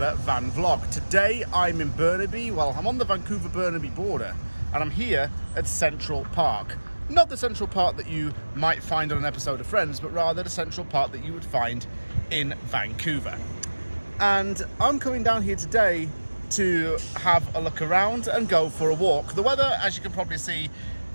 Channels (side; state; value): both; inverted; correlation -1.00